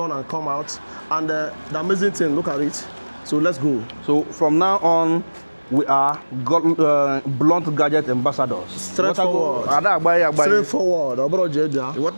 and come out. And the amazing thing, look at it. So let's go. from now on, we are blunt gadget ambassadors. Straightforward. Straightforward. Straightforward.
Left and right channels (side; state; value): both; inverted; correlation -1.00